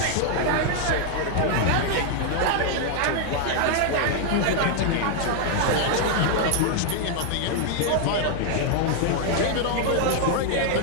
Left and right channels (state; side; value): different; both; correlation 0.00